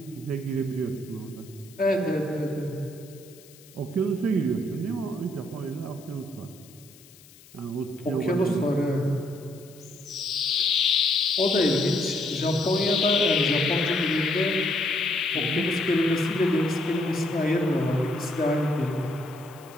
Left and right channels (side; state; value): left; noise; hiss, 24 dB below the sound